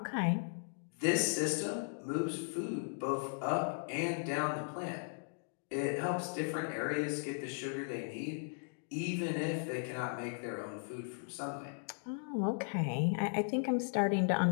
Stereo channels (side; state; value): right; silent; digital silence